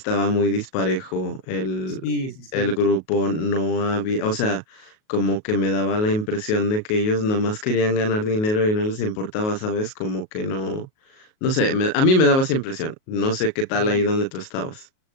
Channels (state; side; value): late; right; 38 ms